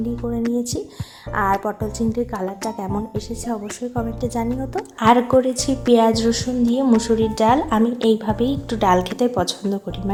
করে নিয়েছি, আর পটল চিংড়ির কালারটা কেমন এসেছে অবশ্যই কমেন্টে জানিও তো। আর করেছি পেঁয়াজ রসুন দিয়ে মুসুরির ডাল। আমি এইভাবেই একটু ডাল খেতে পছন্দ করি,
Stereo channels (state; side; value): identical; both; correlation 1.00